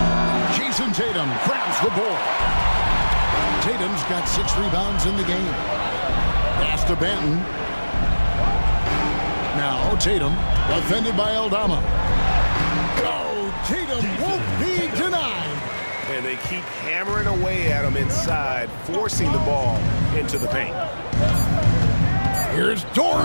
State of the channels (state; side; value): inverted; both; correlation -1.00